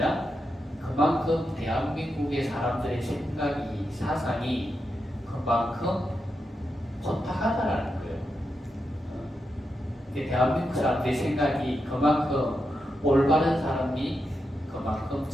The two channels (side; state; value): both; normal; correlation 0.86